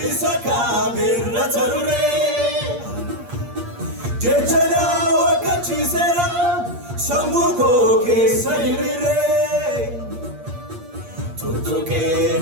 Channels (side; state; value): left; late; 8.5 ms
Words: isa kaamirra tarure jechana wakkachiiseera samuko keessa hiriire tuttuqee